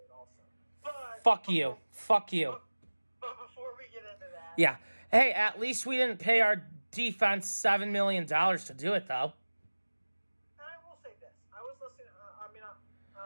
also. Fuck you. But before we get into that... Yeah. Hey, at least we didn't pay our defense $7 million to do it, though. And I will say this. I was listening...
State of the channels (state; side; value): inverted; both; correlation -1.00